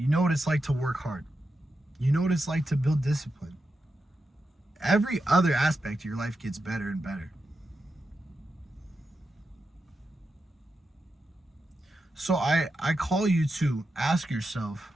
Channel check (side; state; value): both; normal; correlation 0.88